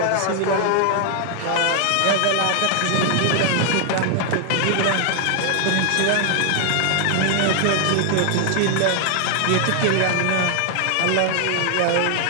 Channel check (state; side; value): different; both; correlation 0.00